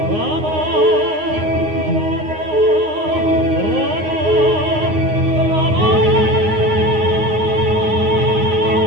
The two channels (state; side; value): late; left; 9.6 ms